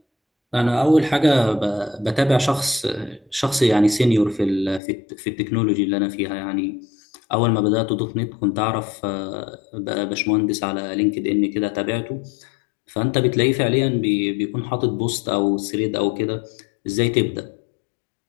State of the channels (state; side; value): drops out; right; at 4.8 s